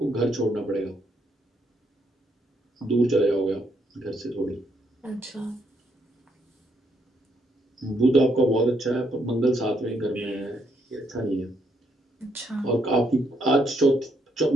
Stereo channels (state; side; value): normal; both; correlation 0.74